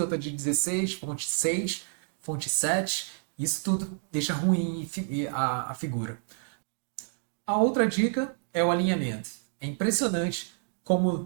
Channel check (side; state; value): left; silent; 59 dB below the other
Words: outra de 16, fonte 6, fonte 7. Isso tudo deixa ruim a figura. A outra dica é o alinhamento. É impressionante